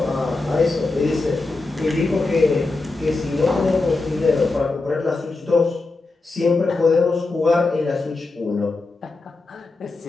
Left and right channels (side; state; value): right; quieter; 3.4 dB